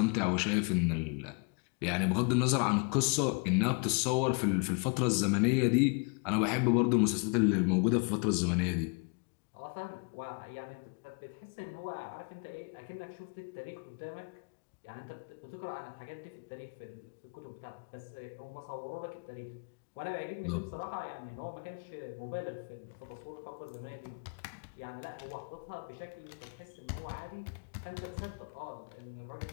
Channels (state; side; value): quieter; right; 35.1 dB